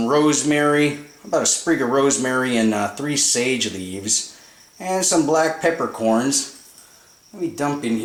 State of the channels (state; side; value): identical; both; correlation 1.00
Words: rosemary, about a sprig of rosemary and 3 sage leaves, and some black peppercorns. Let me dump in